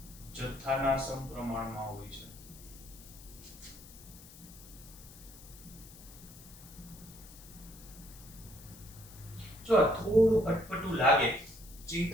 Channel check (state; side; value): noise; left; hiss, 18 dB below the sound